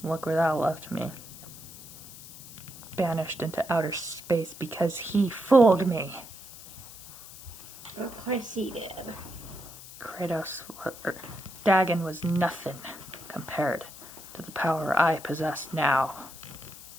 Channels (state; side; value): noise; left; hiss, 16 dB below the sound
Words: Look where that left me. Banished into outer space because he fooled me. Of course he did. Dagon was nothing compared to the power I possess now.